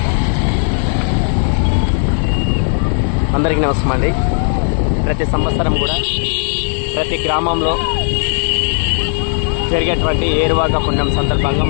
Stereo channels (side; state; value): right; silent; 55 dB below the other